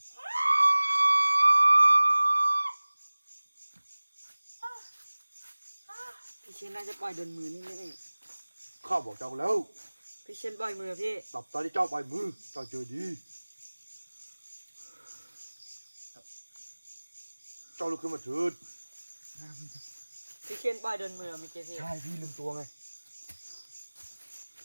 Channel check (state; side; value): inverted; both; correlation -1.00